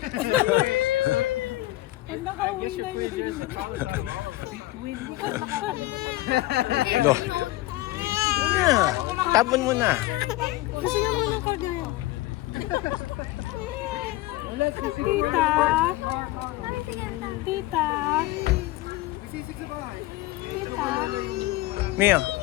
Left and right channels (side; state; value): right; quieter; 17.7 dB